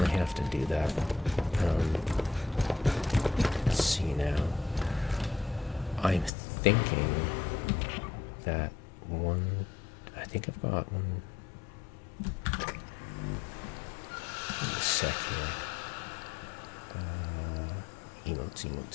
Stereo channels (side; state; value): right; drops out; at 6.3 s